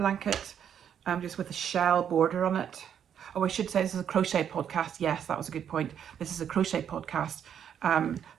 just with a shell border on it. Oh, I should say this is a crochet podcast. Yes, that was a good point. This is a crochet podcast.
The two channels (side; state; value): left; quieter; 8.8 dB